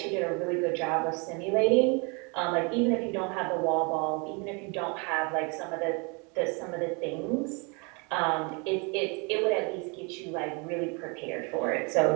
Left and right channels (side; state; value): left; quieter; 32.2 dB